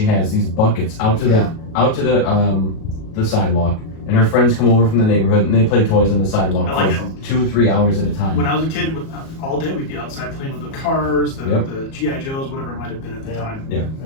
has, these buckets out to the sidewalk, and her friends come over from the neighborhood and they play toys on the sidewalk for 2 or 3 hours at a time. When I was a kid, all day we'd be outside playing with the cars, the GI Joes, whatever it might have been at the time. Yeah.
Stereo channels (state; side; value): late; right; 37 ms